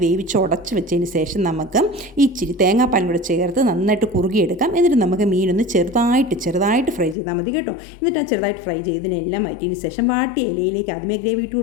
വേവിച്ച് ഉടച്ച് വെച്ചതിന് ശേഷം നമുക്ക് ഇച്ചിരി തേങ്ങാപ്പാലും കൂടെ ചേർത്ത് നന്നായിട്ട് കുറുകിയെടുക്കാം. എന്നിട്ട് നമുക്ക് മീനൊന്ന് ചെറുതായിട്ട് ഫ്രൈ ചെയ്താൽ മതി കേട്ടോ. എന്നിട്ട് ആ ചെറുതായിട്ട് ഫ്രൈ ചെയ്തതിനെല്ലാം മാറ്റിയതിന് ശേഷം വാട്ടിയ ഇലയിലേക്ക് ആദ്യമേ ഗ്രേവി ഇട്ട്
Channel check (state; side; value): drops out; right; at 7.2 s